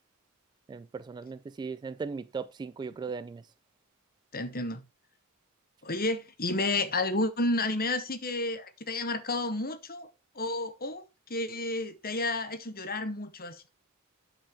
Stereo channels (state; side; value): normal; both; correlation 0.16